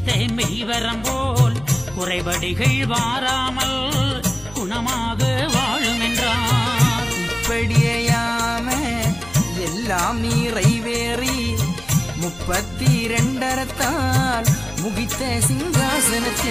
மெய்வரம் போல் குறைபடிகள் வாராமல் குணமாக வாழும் என்றார் இப்படியாம எல்லாம் நிறைவேறி 32 முகித்த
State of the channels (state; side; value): noise; left; hum, 20 dB below the sound